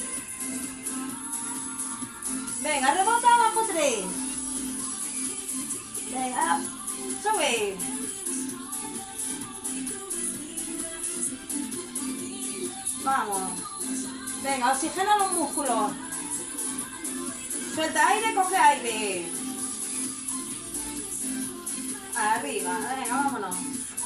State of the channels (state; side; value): identical; both; correlation 1.00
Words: Venga, rebota abajo 3. Venga, sube. Vamos. Venga, oxigena los músculos. Suelta aire, coge aire. Arriba, venga, vámonos.